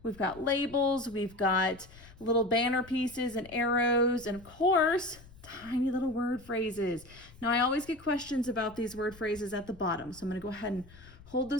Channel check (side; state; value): left; noise; rumble, 22 dB below the sound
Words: We've got labels, we've got little banner pieces and arrows, and of course, tiny little word phrases. Now, I always get questions about these word phrases at the bottom, so I'm going to go ahead and hold